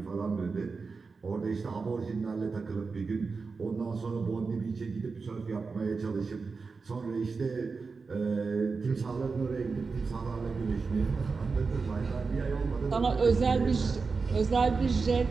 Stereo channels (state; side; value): quieter; left; 4.6 dB